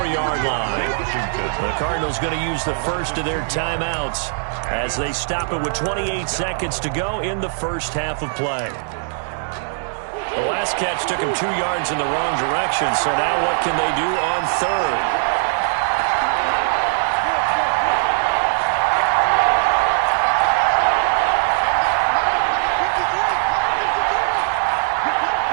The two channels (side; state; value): left; silent; digital silence